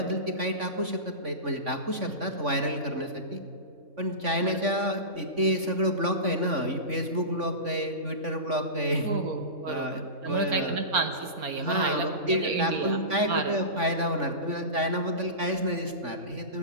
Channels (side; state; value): left; late; 3.5 ms